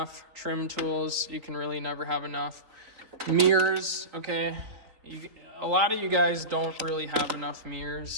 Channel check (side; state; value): left; late; 4.3 ms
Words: Trim tools, you can really never have enough. Mirrors, okay. A lot of you guys don't really have enough